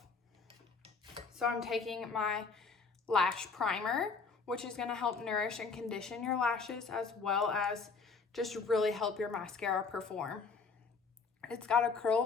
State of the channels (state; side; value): quieter; right; 4.8 dB